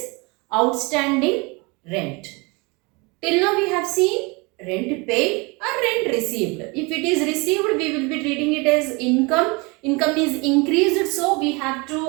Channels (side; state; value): left; quieter; 27.8 dB